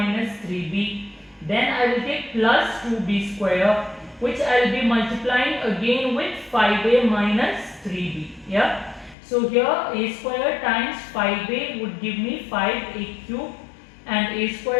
3b. Then I will take plus 2b square, which I will be multiplying again with 5a minus 3b. Yeah. So here a square times 5a would give me 5a cube, and a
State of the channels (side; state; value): right; drops out; at 9.2 s